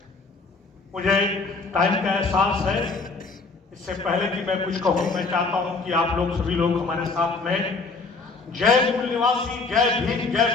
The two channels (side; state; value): right; quieter; 4.0 dB